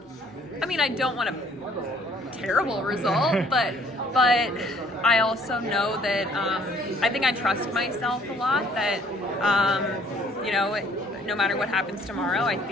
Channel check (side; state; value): both; normal; correlation 0.60